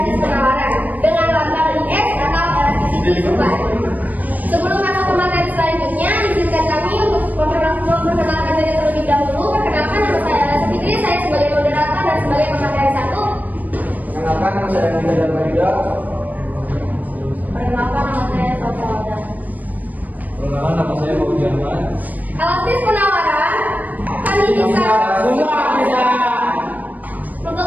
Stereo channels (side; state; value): left; late; 0.080 ms